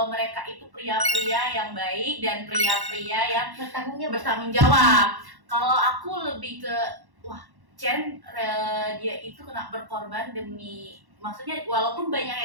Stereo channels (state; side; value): late; left; 1.1 ms